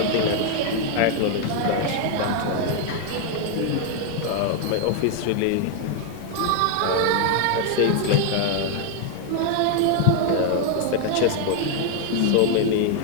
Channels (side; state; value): both; different; correlation 0.00